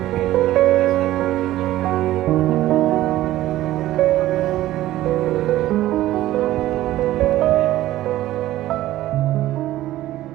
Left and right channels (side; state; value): left; quieter; 14.9 dB